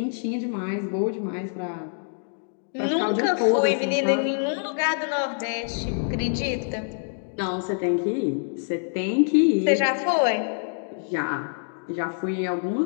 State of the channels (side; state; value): right; silent; digital silence